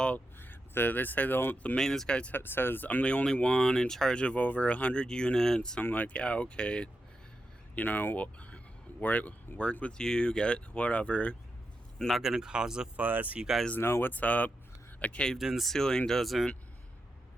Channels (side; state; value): both; normal; correlation 0.87